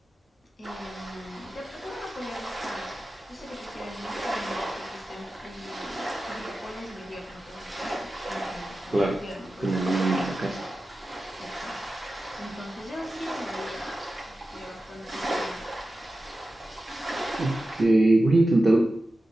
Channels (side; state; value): both; normal; correlation 0.94